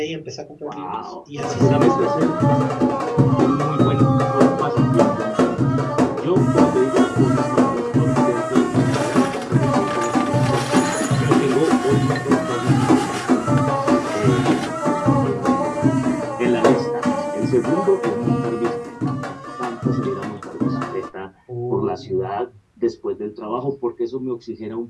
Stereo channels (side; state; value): both; identical; correlation 1.00